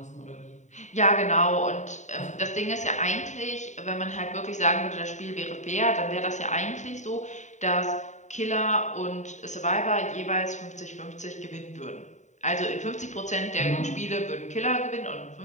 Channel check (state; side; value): late; right; 0.34 ms